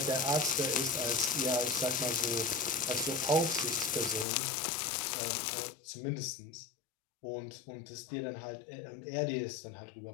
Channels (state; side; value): drops out; right; at 4.2 s